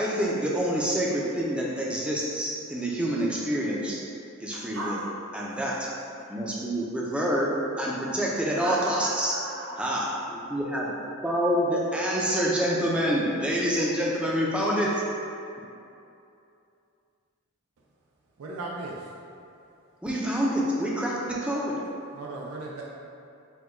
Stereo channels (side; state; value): both; normal; correlation 0.45